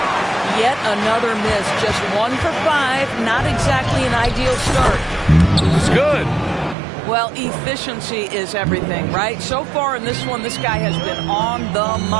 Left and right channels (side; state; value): left; drops out; at 6.8 s